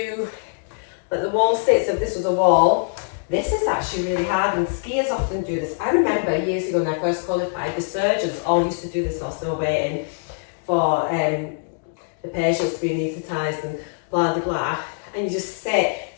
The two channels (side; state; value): right; silent; digital silence